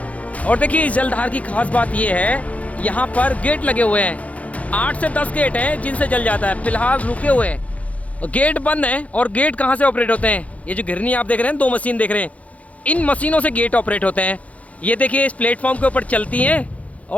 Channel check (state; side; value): late; right; 0.067 ms